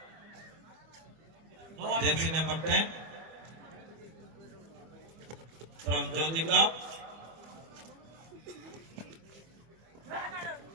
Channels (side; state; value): left; late; 25 ms